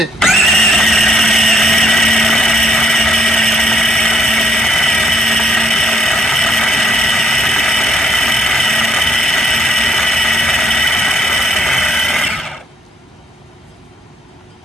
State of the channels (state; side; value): normal; both; correlation 0.70